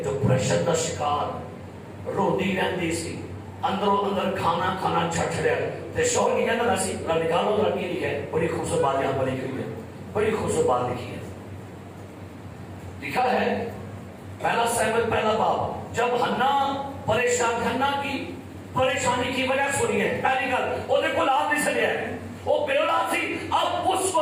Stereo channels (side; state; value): both; identical; correlation 1.00